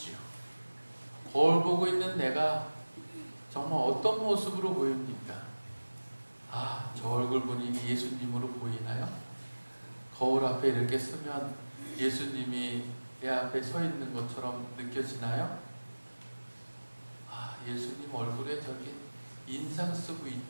거울 보고 있는 내가 정말 어떤 모습으로 보입니까? 저 얼굴 보니 예수님으로 보이나요? 거울 앞에 이렇게 서면 예수님이 내 앞에 서 있는 것처럼 느껴지나요? 예수님 얼굴에 저기 인상 쓰고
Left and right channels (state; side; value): inverted; both; correlation -1.00